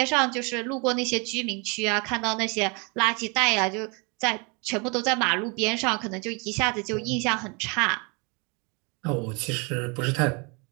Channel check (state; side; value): quieter; left; 31.5 dB